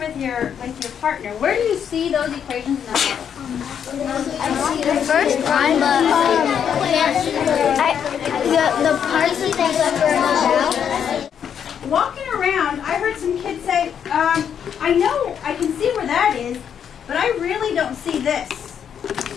with your partner. Where do you see those equations in the model? The first one, but the parts that they about. Walking around, I heard some kids say, I know, I can see where that is, but I really don't see this.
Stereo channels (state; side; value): quieter; right; 8.2 dB